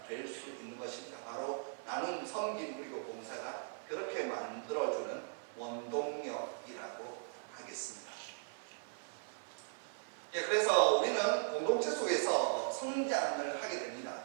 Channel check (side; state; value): left; silent; 52 dB below the other